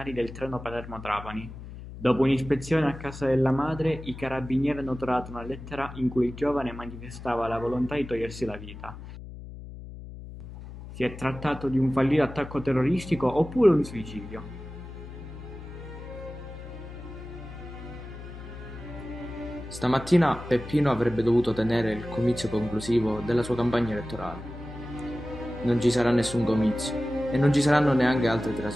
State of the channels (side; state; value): left; noise; hum, 13 dB below the sound